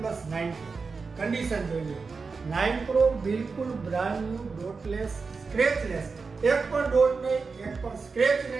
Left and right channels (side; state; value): left; quieter; 4.7 dB